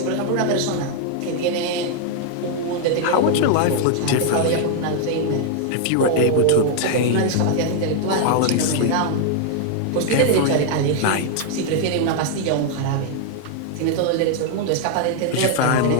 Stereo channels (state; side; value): different; both; correlation 0.00